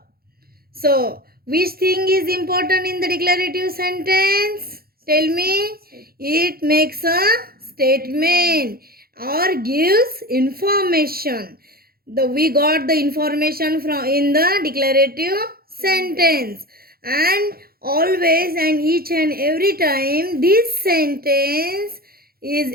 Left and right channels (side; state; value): left; late; 0.44 ms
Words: So, which thing is important in the declarative sentence? Tell me. It makes a statement or gives information. We got the information from in the declarative sentence, and always and each and every time this sentence is